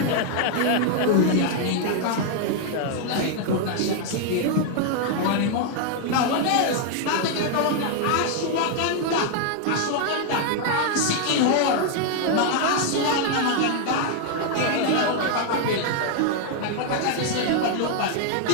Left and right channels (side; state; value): both; different; correlation 0.00